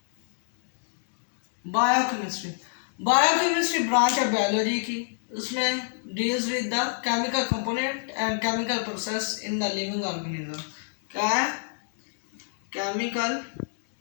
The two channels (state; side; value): silent; right; digital silence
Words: बायोकेमिस्ट्री बायोकेमिस्ट्री ब्रांच है बायोलॉजी की। उसमें deals with the chemical component and chemical process in the living organism. क्या है? Chemical